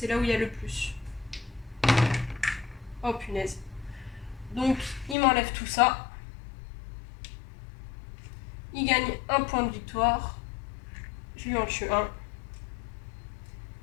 là où il y a le plus. Oh punaise. Donc, il m'enlève tout ça. Il gagne un point de victoire. Je lui en tue un.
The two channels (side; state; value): right; drops out; at 5.2 s